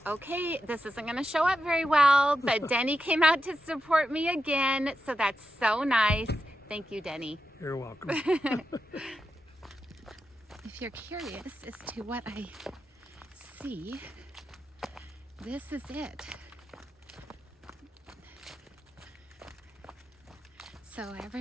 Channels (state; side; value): normal; both; correlation 0.88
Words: Okay, this isn't going to show up very well, but Denny came out to support me again, so that's so nice. Thank you, Denny. You're welcome. If you're curious as to what I see, this is it. So